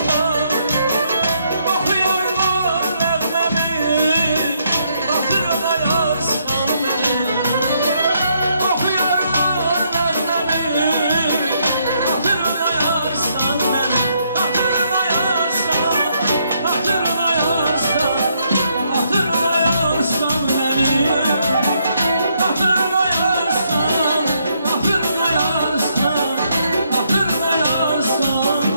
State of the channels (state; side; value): inverted; both; correlation -0.74